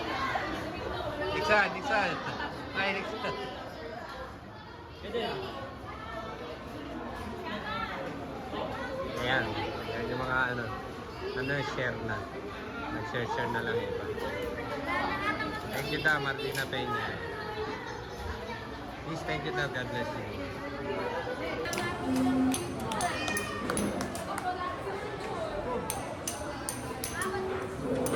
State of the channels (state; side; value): identical; both; correlation 1.00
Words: Diksan. Ay, Diksan. Ayan. Ayan yung mga share na. Nag-share na lang iba. Thank you daw, Martina Peña. Please, thank you daw. God bless you.